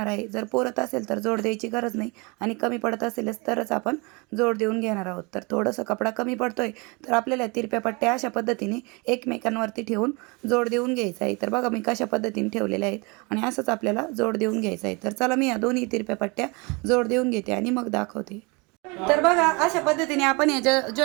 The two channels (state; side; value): quieter; left; 28.6 dB